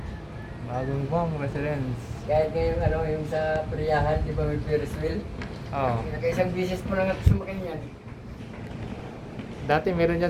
Bagong bang residence. Kahit ngayon, ano, yung sa Priyahan, di ba may Ferris wheel? Oo. Nakaisang bisis po lang at sumakin yan. Dati meron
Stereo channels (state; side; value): identical; both; correlation 1.00